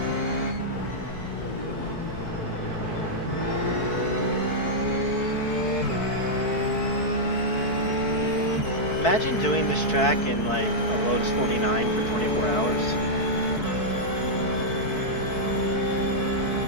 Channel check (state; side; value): late; right; 4.6 ms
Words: Imagine doing this track in like a Lotus 49 for 24 hours.